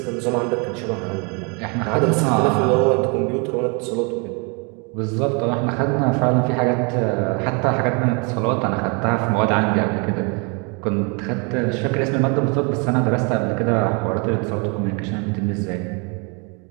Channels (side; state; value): left; quieter; 33.0 dB